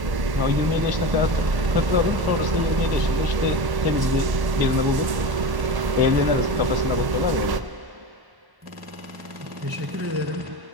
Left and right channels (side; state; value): left; late; 1.1 ms